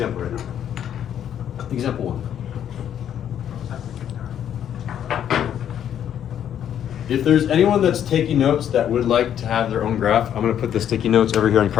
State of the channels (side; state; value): right; quieter; 9.8 dB